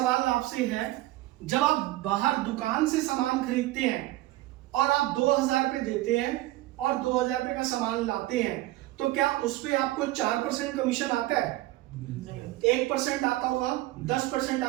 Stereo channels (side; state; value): left; quieter; 17.4 dB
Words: आपसे है, जब आप बाहर दुकान से सामान खरीदते हैं और आप 2000 रुपए देते हैं और 2000 रुपए का सामान लाते हैं, तो क्या उस पे आपको 4% कमीशन आता है? नहीं। 1% आता होगा, 10%